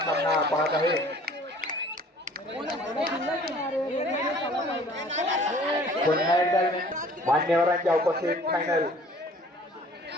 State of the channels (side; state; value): both; normal; correlation 0.52